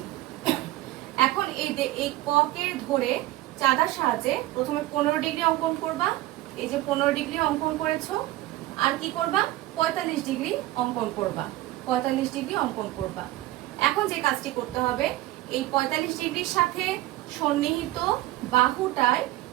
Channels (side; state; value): left; quieter; 16.9 dB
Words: এখন এই ক কে ধরে চাঁদার সাহায্যে প্রথমে 15 ডিগ্রি অঙ্কন করবা। এই যে 15 ডিগ্রি অঙ্কন করেছো, আর কি করবা? 45 ডিগ্রি অঙ্কন করবা। 45 ডিগ্রি অঙ্কন করবা। এখন যে কাজটি করতে হবে, এই 45 ডিগ্রির সাথে সন্নিহিত বাহুটায়